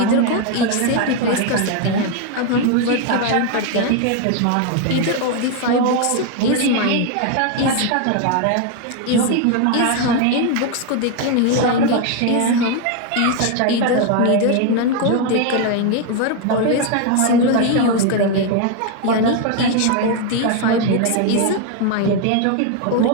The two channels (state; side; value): different; both; correlation 0.01